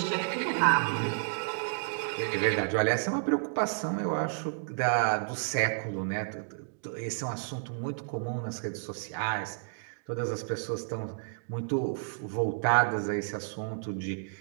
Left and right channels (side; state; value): left; silent; digital silence